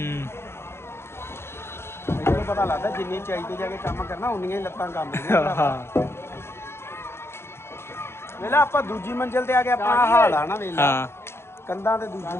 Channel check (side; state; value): right; late; 0.12 ms